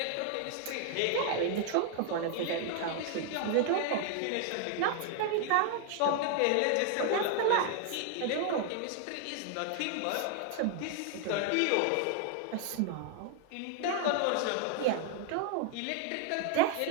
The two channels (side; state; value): both; different; correlation 0.00